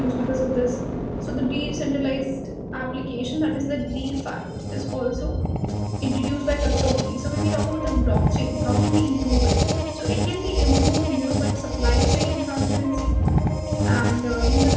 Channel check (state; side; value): identical; both; correlation 1.00